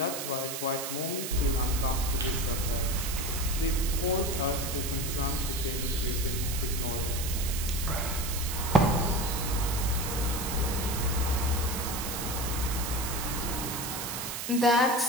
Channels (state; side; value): noise; right; hiss, 5 dB below the sound